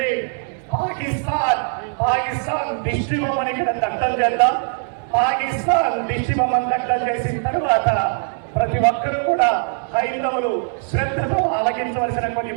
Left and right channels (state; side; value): silent; left; 56 dB below the other